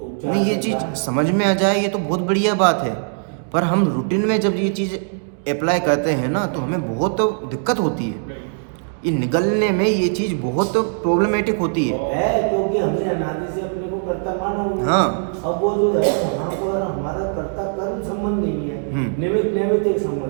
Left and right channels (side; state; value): left; silent; digital silence